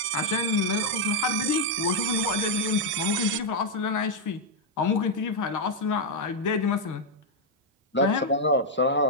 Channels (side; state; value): both; normal; correlation -0.01